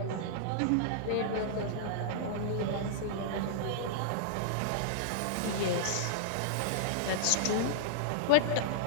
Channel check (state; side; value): different; both; correlation -0.02